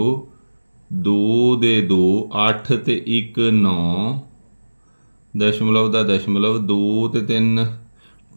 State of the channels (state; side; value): inverted; both; correlation -1.00